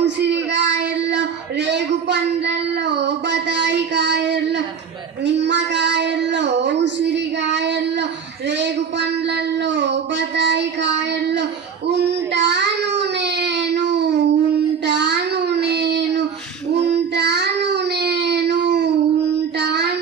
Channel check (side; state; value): left; quieter; 6.7 dB